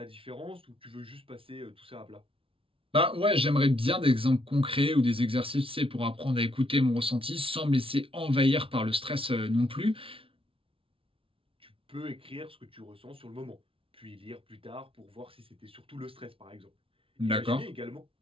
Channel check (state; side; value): late; left; 0.26 ms